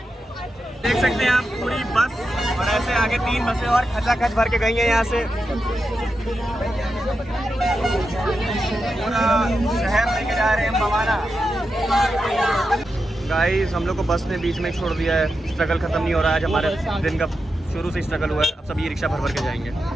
देख सकते हैं आप पूरी बस, और ऐसे आगे 3 बसें और खचाखच भर के गई हैं यहाँ से। पूरा शहर लेके जा रहे हैं भवाना। गाइस हम लोग को बस ने बीच में छोड़ दिया है। स्ट्रगल खत्म नहीं हो रहा है। आज हमारे दिन का शुरू से स्ट्रगल हुआ है। अब सब ई रिक्शा भर भर के जाएंगे।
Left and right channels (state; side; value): normal; both; correlation 0.88